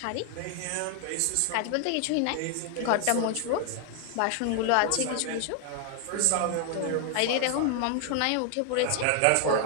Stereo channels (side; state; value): both; different; correlation 0.00